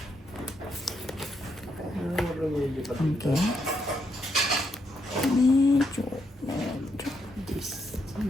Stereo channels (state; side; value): normal; both; correlation 0.78